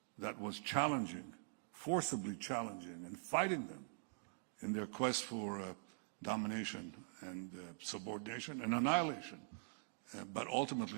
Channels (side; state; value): left; silent; digital silence